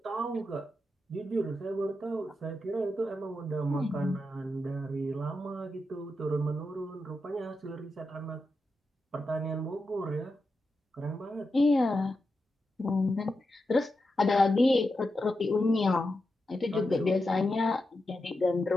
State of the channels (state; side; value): normal; both; correlation 0.88